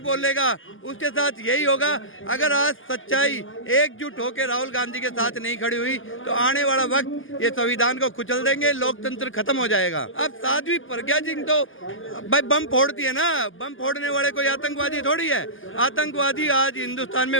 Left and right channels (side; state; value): right; late; 0.58 ms